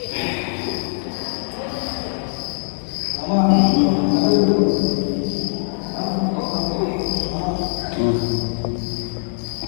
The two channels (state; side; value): silent; right; digital silence